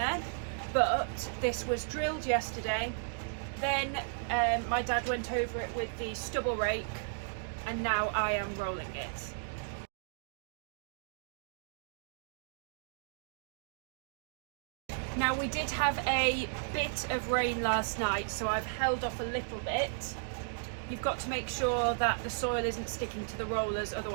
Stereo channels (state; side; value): silent; left; digital silence